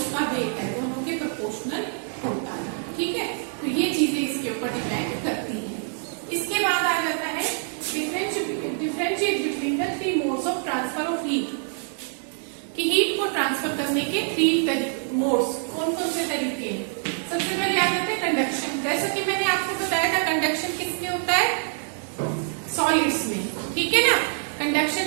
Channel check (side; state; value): left; silent; 61 dB below the other